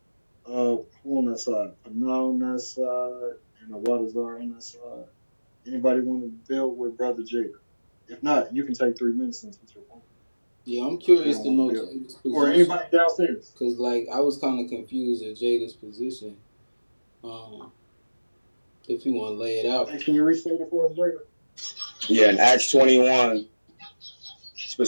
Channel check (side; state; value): both; inverted; correlation -1.00